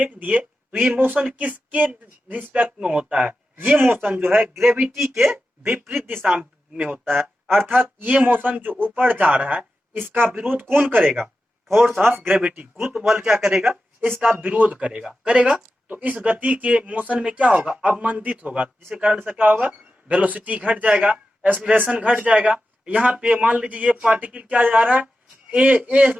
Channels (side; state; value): both; normal; correlation 0.92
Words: दिए, तो ये मोशन किसके रिस्पेक्ट में होता है, ये मोशन जो है ग्रेविटी के विपरीत दिशा में होता है। अर्थात ये मोशन जो ऊपर जा रहा है इसका विरोध कौन करेगा, फोर्स ऑफ ग्रेविटी, गुरुत्व बल क्या करेगा, इसका विरोध करेगा। तो इस गति के मोशन में क्या होगा, अवमंदित होगा, जिसके कारण से क्या होगा, वेलोसिटी घट जाएगा, एक्सेलरेशन घट जाएगा। यहाँ पे मान लीजिए ये पार्टिकल क्या जा रहा है, ए